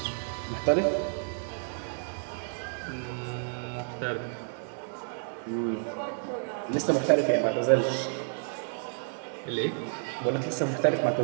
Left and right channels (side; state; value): left; silent; 58 dB below the other